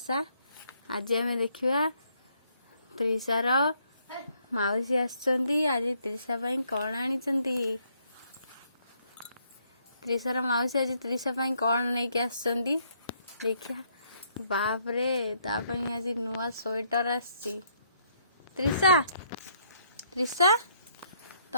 आज आम देखा त्रिशार माउसी आसुंदी। आज त्रिशा पाई कौन आनी? त्रिशार माउसी आज त्रिशा पाई कौन नहीं के आसुंदी देखा। बाप रे, तापाई आज नुआ स्वेटर आसी। त्रिशा त्रिशा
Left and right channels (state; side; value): inverted; both; correlation -0.71